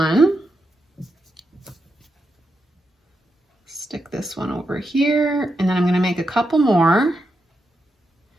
Stick this one over here and then I'm going to make a couple more.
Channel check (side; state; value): both; normal; correlation 0.85